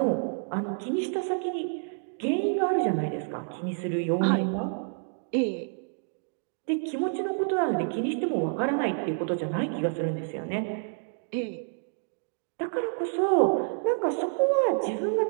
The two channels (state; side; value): silent; left; digital silence